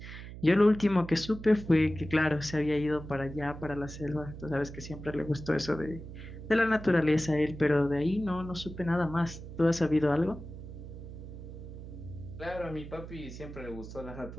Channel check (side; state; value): right; noise; hum, 12 dB below the sound